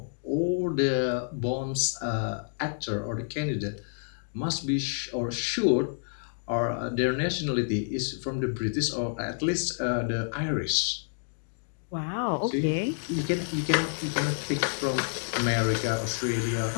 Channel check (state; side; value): silent; right; digital silence